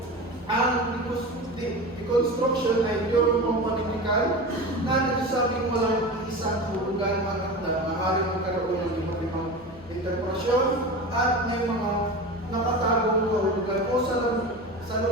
Ang deconstruction ay teorya pampanitikan na nagsasabing walang isang kahulugan ang akda, maaaring magkaroon ng iba't ibang interpretasyon at may mga nakatagong kahulugan o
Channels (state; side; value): normal; both; correlation 0.28